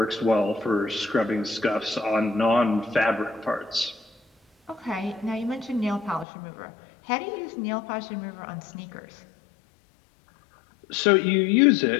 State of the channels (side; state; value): right; drops out; at 6.2 s